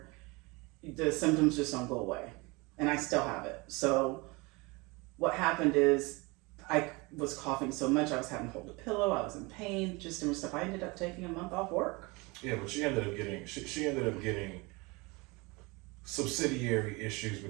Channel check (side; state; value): left; quieter; 25.8 dB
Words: the symptoms just don't go away, and I still have it. So what happened is I was coughing so much I was having to hold a pillow. I was in pain, just doing stuff. I ended up taking a month off work. Yeah, but she ended up getting subsidiary issues